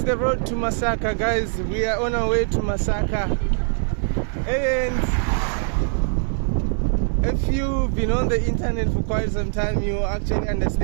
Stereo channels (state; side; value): silent; left; 64 dB below the other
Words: the road to Masaka, guys. We are on our way to Masaka. And if you've been on the internet for quite some time, you actually